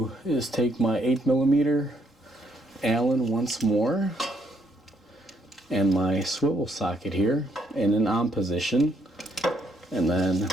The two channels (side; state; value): both; normal; correlation 0.71